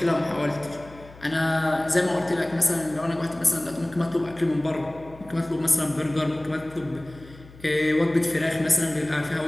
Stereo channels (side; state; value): left; noise; hum, 21 dB below the sound